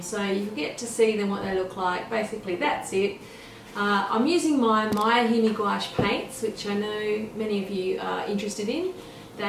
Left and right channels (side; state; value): both; identical; correlation 1.00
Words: you get to see them what they look like. Basically that's it. I'm using my Miya HIMI gouache paints, which I know many of you are interested in.